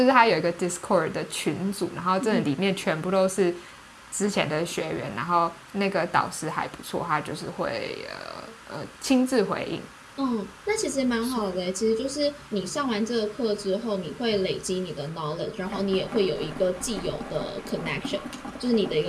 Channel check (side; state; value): both; identical; correlation 1.00